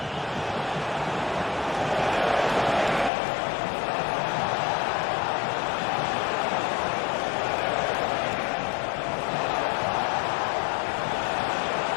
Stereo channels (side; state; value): right; drops out; at 3.1 s